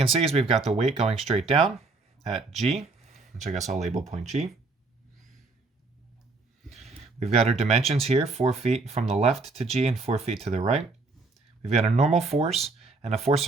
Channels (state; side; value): quieter; left; 3.7 dB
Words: see is we've got the weight going straight down at G, which I guess I'll label point G. We've got our dimensions here, 4 feet from the left to G and 4 feet to the right. We've got a normal force and a force